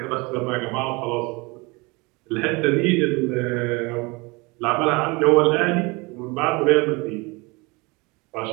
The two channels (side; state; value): left; quieter; 26.3 dB